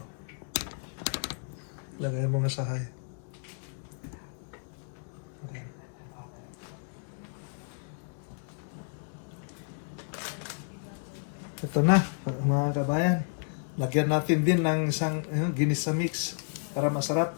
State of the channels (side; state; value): right; silent; digital silence